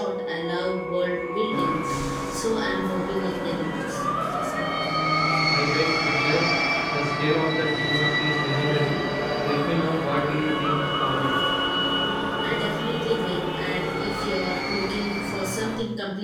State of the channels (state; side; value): identical; both; correlation 1.00